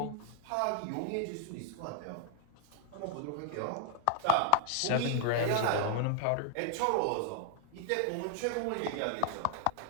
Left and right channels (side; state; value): both; different; correlation 0.00